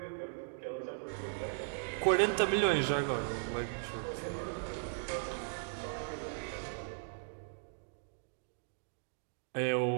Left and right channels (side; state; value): left; silent; digital silence